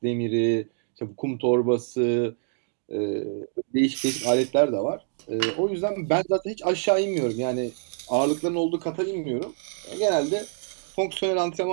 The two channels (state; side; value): silent; left; 61 dB below the other